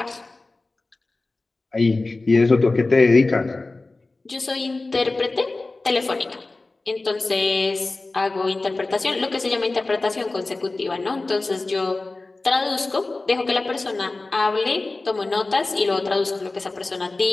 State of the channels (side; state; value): right; quieter; 3.3 dB